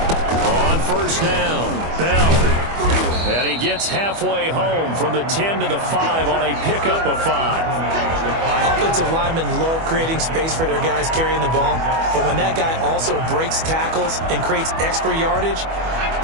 On 1st down, Bell. And he gets halfway home from the 10 to the 5 on a pickup of 5. Offensive linemen love creating space for their guys carrying the ball, but when that guy also breaks tackles and creates extra yardage,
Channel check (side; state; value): left; late; 25 ms